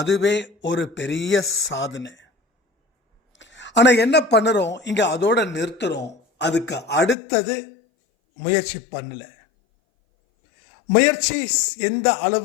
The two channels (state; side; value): drops out; right; at 7.2 s